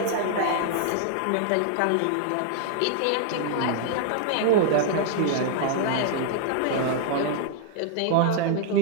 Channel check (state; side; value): different; both; correlation 0.00